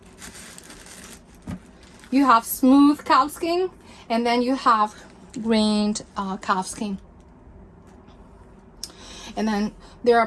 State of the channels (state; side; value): identical; both; correlation 1.00